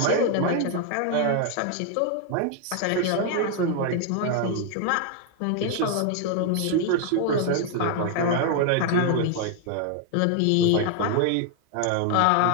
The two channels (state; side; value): different; both; correlation 0.00